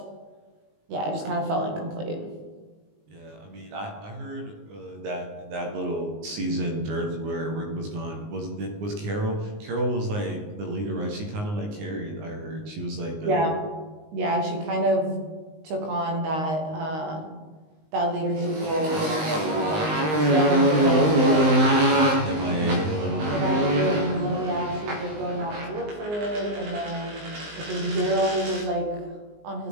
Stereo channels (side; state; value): left; late; 19 ms